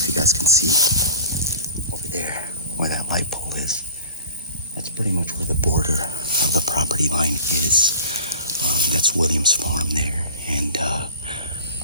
you guys can see over there where that light pole is. That's pretty much where the border of the property line is. That's Williams' farm there, and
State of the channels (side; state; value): both; inverted; correlation -0.41